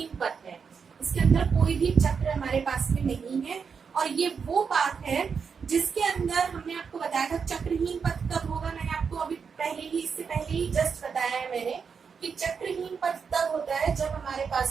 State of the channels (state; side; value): quieter; left; 6.0 dB